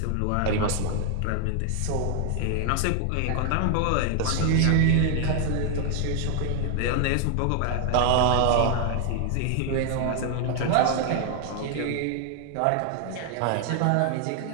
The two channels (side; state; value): both; different; correlation 0.00